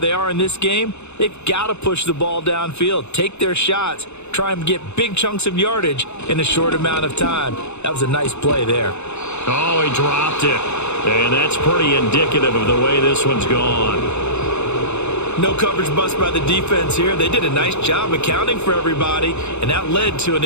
they are in this game, they've got to push the ball downfield, take their shots, try and get big chunks of yardage in a short amount of time. That was a nice play there. Oh, he dropped it. And that's pretty indicative of the way this one's gone. No coverage bust by the defense here. They did a nice job accounting for everybody, and that led to an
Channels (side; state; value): right; late; 0.82 ms